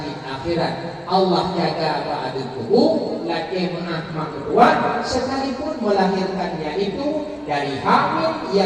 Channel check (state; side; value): identical; both; correlation 1.00